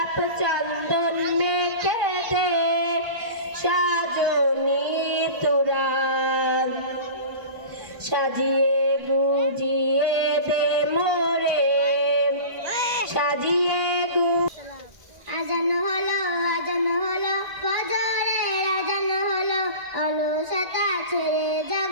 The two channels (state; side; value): late; left; 1.5 ms